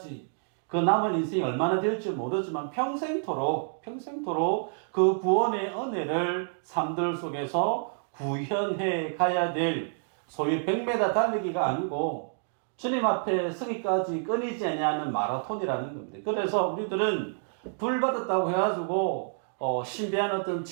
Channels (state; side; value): silent; left; digital silence